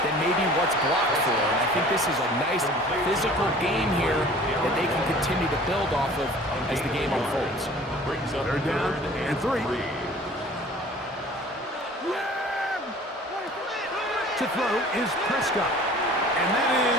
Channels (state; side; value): normal; both; correlation 0.47